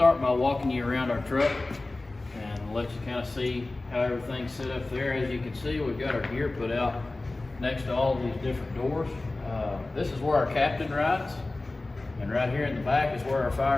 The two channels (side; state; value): right; quieter; 3.0 dB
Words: by walking you around our truck and let you kind of see how everything's set up there. As you can see, we've got our gear put out next to all of these different doors. This is where our captain rides, and right here in the back is where our